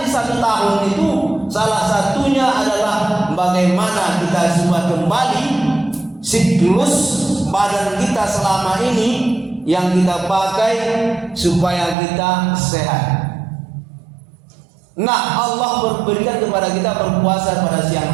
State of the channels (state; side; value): drops out; left; at 12.0 s